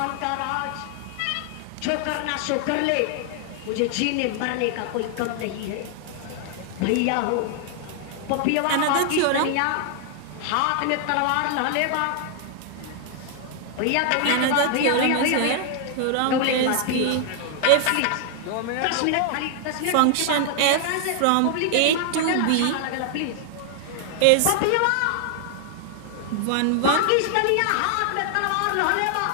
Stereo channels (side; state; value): both; different; correlation 0.00